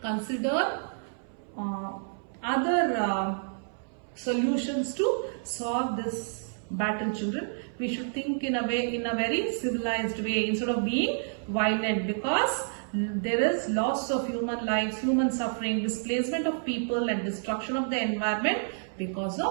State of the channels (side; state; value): left; silent; 58 dB below the other